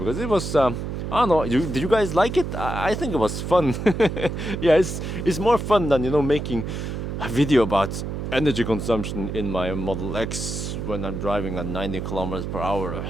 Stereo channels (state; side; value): noise; right; hum, 5 dB below the sound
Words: it was I don't know, did you guys like it? I think it was fun. Yeah, it's more fun than, you know, making a video about energy consumption in my Model X when I'm driving at 90 kilometers per hour.